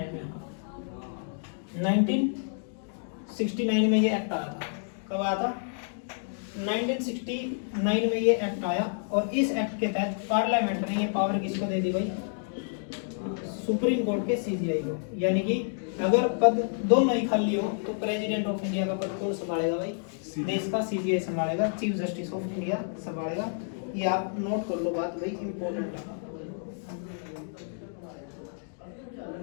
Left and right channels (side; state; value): right; silent; digital silence